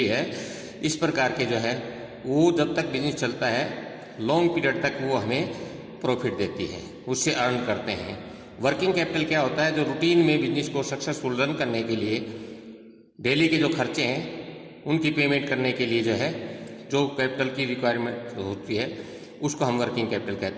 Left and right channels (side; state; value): both; identical; correlation 1.00